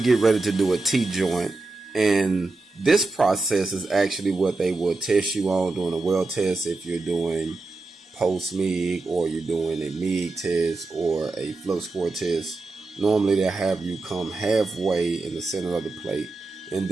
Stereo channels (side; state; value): left; quieter; 3.4 dB